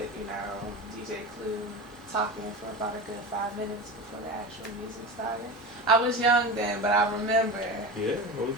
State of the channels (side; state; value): both; normal; correlation 0.26